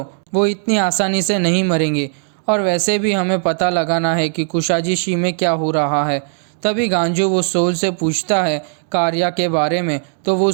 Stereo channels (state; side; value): silent; left; 68 dB below the other